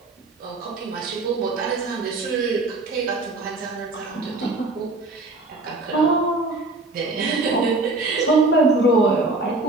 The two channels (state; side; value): quieter; left; 3.0 dB